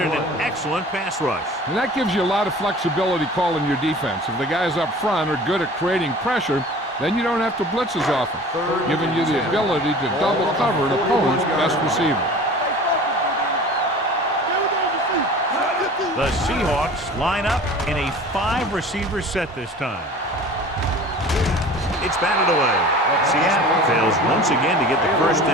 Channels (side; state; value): both; normal; correlation 0.42